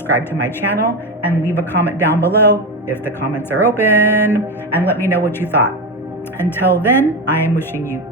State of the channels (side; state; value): both; normal; correlation 0.16